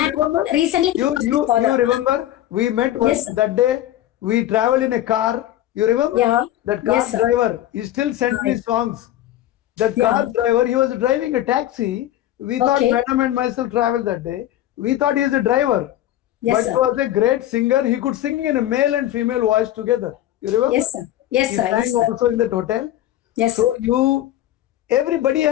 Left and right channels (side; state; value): right; quieter; 13.3 dB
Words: remember? recently, You remember? We met once Yes, sir. that day. We traveled in a car. You remember? Yeah. That car Yes, sir. driver. He still sent me songs. That car driver. He was driving a taxi. We thought Okay. Madam and myself traveled that day. We thought he is a driver. Yes, But sir. he was a great singer. He could sing in a male and female voice together. You remember? Yes, sir. Yes, He sir. sang Yes, sir. also in that hotel. Yes, So sir. everybody